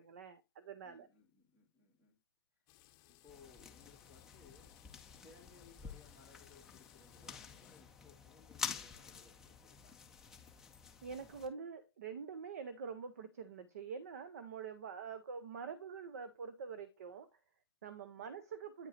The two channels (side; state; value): both; normal; correlation -0.11